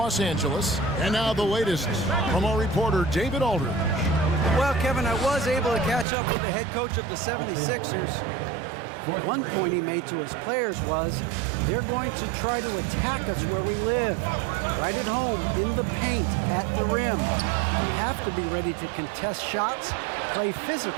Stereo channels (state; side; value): drops out; left; at 6.1 s